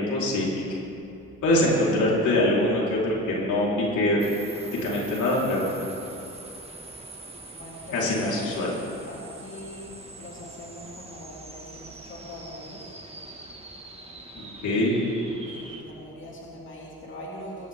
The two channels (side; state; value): both; normal; correlation 0.29